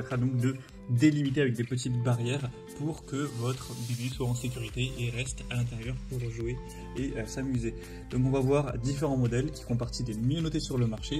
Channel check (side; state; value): both; identical; correlation 1.00